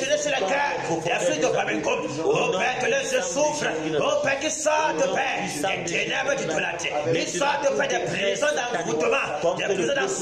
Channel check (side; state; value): right; noise; rumble, 24 dB below the sound